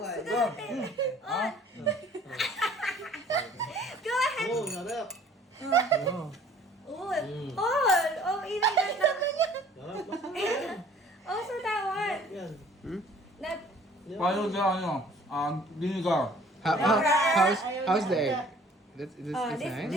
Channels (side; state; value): both; normal; correlation 0.53